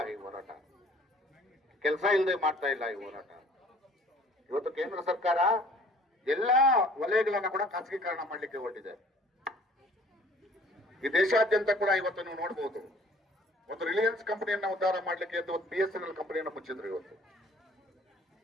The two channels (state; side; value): normal; both; correlation 0.53